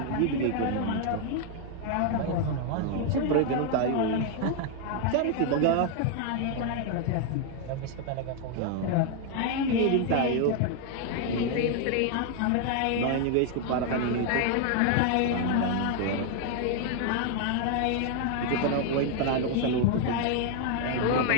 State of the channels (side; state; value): both; different; correlation 0.00